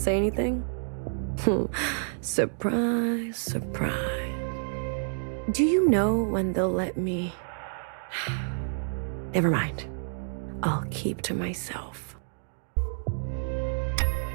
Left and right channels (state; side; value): silent; left; digital silence